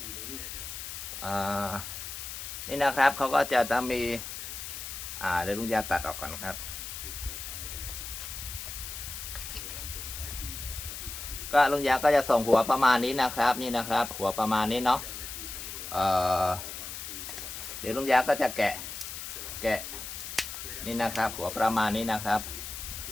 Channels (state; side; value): noise; left; hiss, 8 dB below the sound